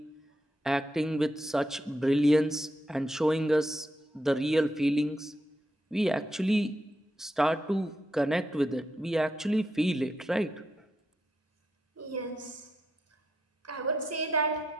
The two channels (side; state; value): both; normal; correlation 0.82